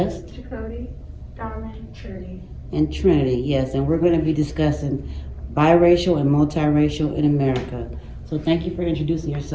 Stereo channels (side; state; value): both; identical; correlation 1.00